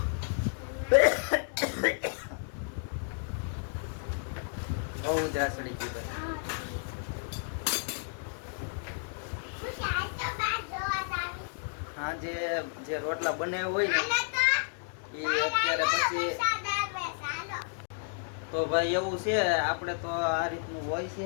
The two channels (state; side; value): silent; right; digital silence